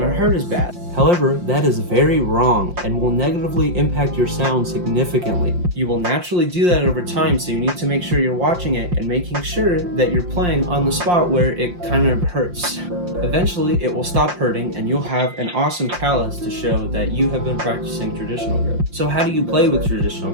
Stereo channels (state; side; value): late; left; 5.7 ms